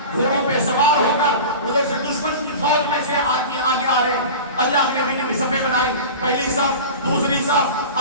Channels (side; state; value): both; inverted; correlation -0.33